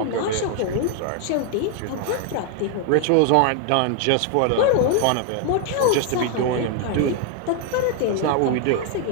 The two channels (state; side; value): different; both; correlation 0.00